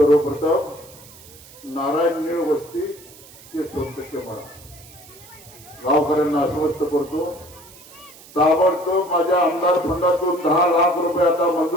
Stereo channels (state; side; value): noise; right; hiss, 21 dB below the sound